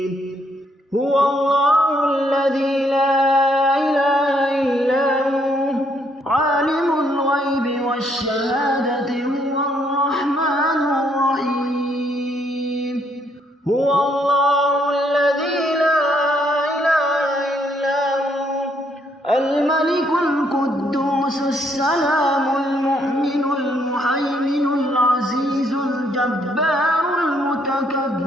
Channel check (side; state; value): both; normal; correlation 0.70